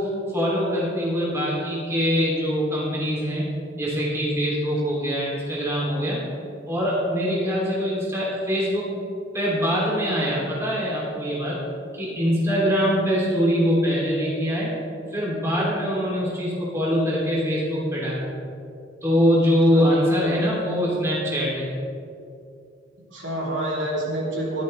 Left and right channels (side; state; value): both; normal; correlation 0.59